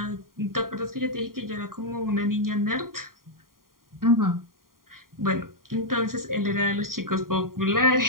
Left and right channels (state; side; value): late; left; 0.91 ms